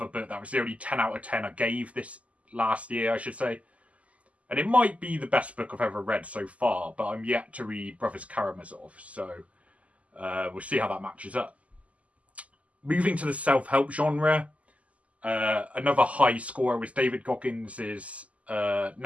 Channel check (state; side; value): late; left; 0.069 ms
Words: book. That was the only 10 out of 10 I gave this last year, I should say. And it might be the best book I've ever read so far, but I'm yet to read Brothers Karamazov, so we'll see how that matches up. Moving to the self-help genre, another high scorer was David Goggins'